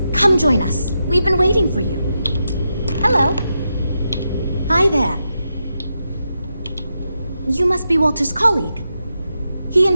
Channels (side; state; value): both; inverted; correlation -0.86